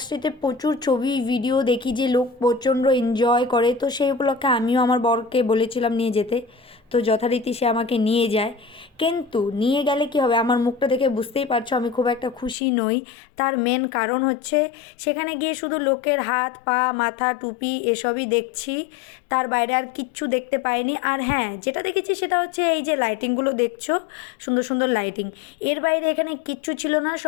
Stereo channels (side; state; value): right; drops out; at 12.6 s